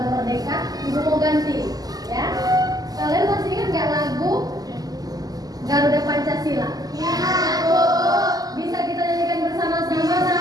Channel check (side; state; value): left; late; 0.18 ms